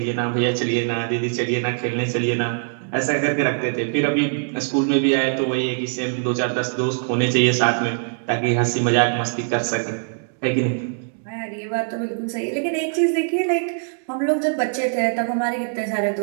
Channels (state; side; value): silent; left; digital silence